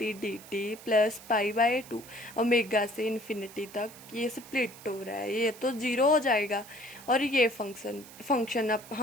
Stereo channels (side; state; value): right; noise; hiss, 18 dB below the sound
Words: D t plus π/2 omega से इन्फिनिटी तक ये स्प्लिट हो रहा है। ये तो 0 हो जाएगा और ये फंक्शन